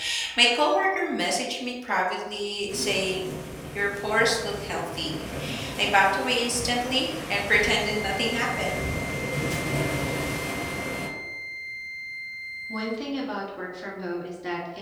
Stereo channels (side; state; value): both; identical; correlation 1.00